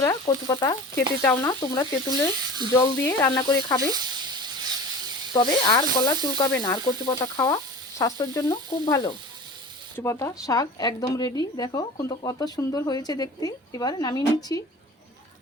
কচু পাতা খেতে চাও না, তোমরা তেঁতুলের জল দিয়ে রান্না করে খাবে, তবে আর গলা চুলকাবে না। আর কচু পাতা খাওয়া স্বাস্থ্যের জন্য খুব ভালো। কচু পাতা শাক একদম রেডি। দেখো কিন্তু কত সুন্দর হয়েছে দেখতে। এবার নামিয়ে নিচ্ছি।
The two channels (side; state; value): both; normal; correlation 0.37